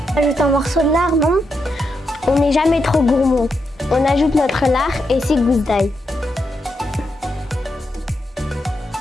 On ajoute un morceau de lard, non? On n'est jamais trop gourmand. On ajoute notre lard et 6 gousses d'ail.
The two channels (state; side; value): normal; both; correlation 0.83